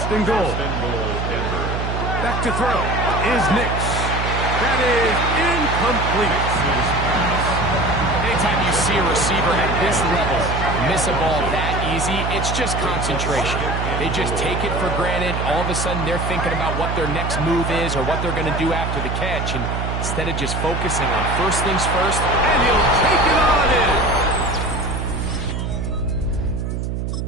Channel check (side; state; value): right; noise; hum, 2 dB below the sound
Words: and goal. Back to throw is Nix. That is incomplete. Anytime you see a receiver at this level miss a ball that easy, it's just concentration. They just take it for granted. All of a sudden, they're thinking about what their next move is or what they're going to do after the catch. And instead of just focusing on first things first, and he'll take it on in.